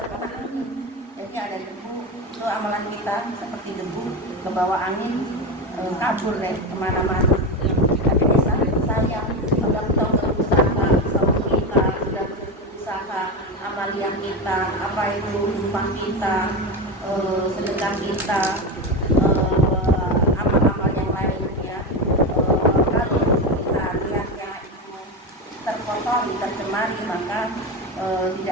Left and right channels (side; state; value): both; normal; correlation 0.18